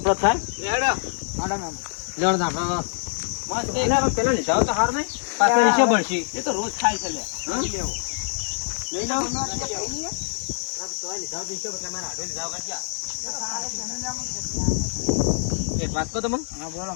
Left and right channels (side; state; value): right; silent; digital silence